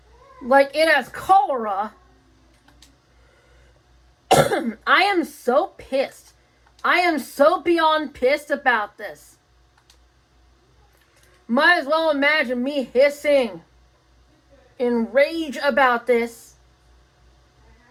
like it has cholera. I am so pissed. I am so beyond pissed about this. Might as well imagine me hissing in rage about this.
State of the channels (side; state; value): both; identical; correlation 1.00